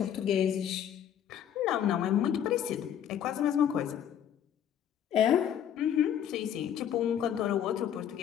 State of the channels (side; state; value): right; quieter; 9.6 dB